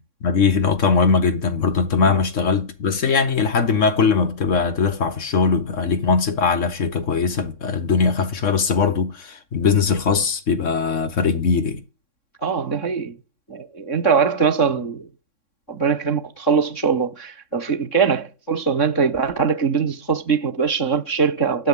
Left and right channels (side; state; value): right; late; 3.6 ms